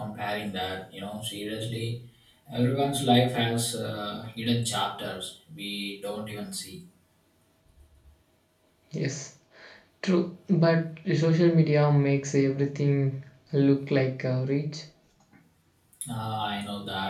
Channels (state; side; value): identical; both; correlation 1.00